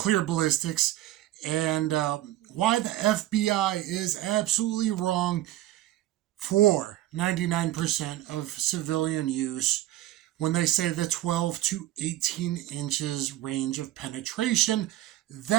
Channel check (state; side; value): quieter; left; 14.5 dB